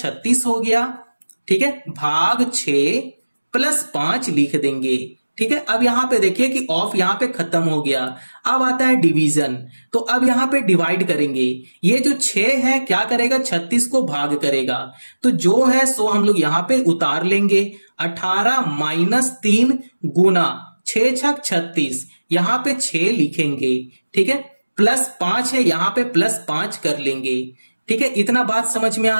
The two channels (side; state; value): both; inverted; correlation -1.00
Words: हो गया, ठीक है, भाग 6 +5 लिख देंगे, ठीक है। अब यहां पे देखिए कि ऑफ यहां पे खत्म हो गया। अब आता है डिवीजन, तो अब यहां पे डिवाइड करेंगे। ये जो 6 है क्या करेगा, 36 को भाग करेगा, तो जो है सो हम लोग यहां पे उतार लेंगे। 18 -3 गुना 6 छक 36, यहां पे 6 लिखेंगे, ठीक है, +5 है, यहां पे +5 कर लेंगे, ठीक है। इतना बात समझ में